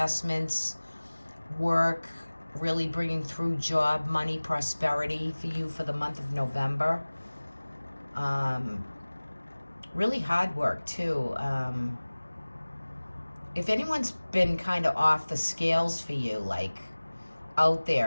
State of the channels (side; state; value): both; inverted; correlation -1.00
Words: work, really bringing through job, money, prosperity for you for the month of November. Really hard work too. If anyone's been kind of off the scales for you, like out